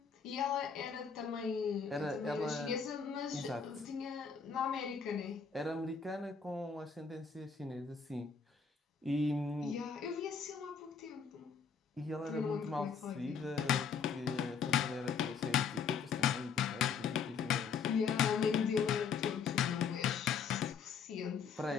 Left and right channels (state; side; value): quieter; right; 6.1 dB